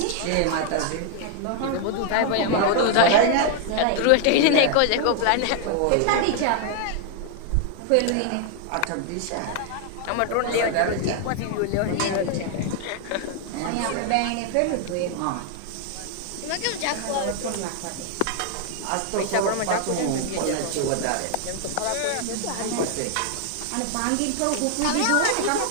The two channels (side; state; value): both; different; correlation 0.00